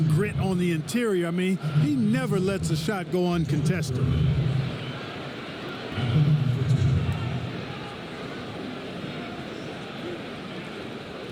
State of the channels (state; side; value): identical; both; correlation 1.00